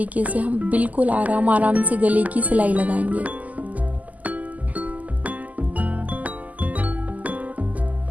से हम बिल्कुल आराम से गले की सिलाई लगाएंगे।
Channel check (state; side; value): late; left; 0.077 ms